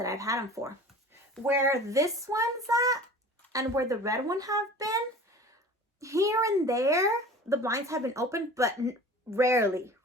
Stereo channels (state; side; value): normal; both; correlation 0.41